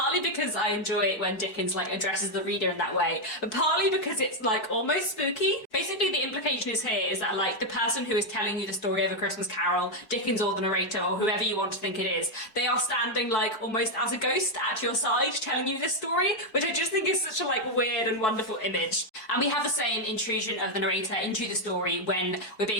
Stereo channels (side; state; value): right; late; 4.6 ms